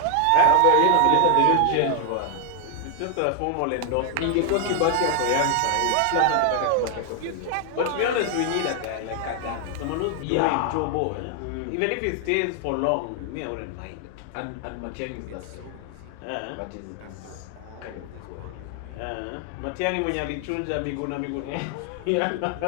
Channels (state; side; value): different; both; correlation 0.00